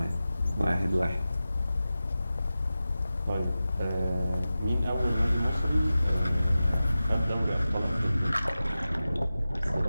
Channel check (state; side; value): inverted; both; correlation -0.94